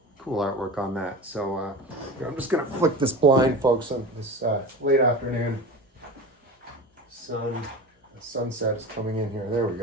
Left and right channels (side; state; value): both; normal; correlation 0.31